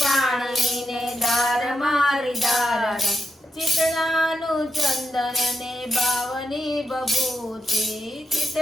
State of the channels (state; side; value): normal; both; correlation 0.85